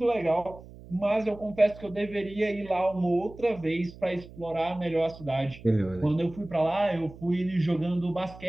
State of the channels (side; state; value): right; noise; hum, 18 dB below the sound